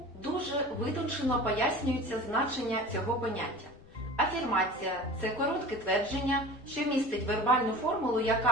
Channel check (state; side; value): noise; left; rumble, 24 dB below the sound